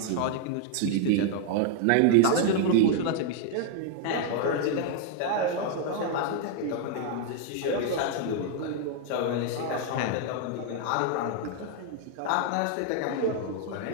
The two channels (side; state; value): both; different; correlation 0.00